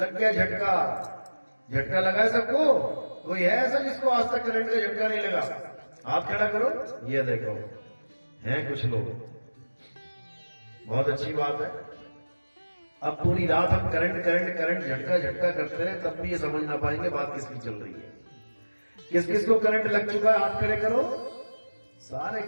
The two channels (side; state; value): both; inverted; correlation -1.00